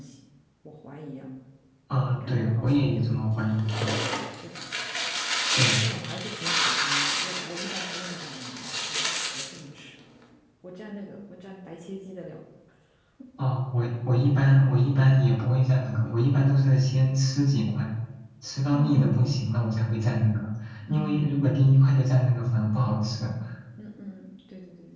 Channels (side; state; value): both; identical; correlation 1.00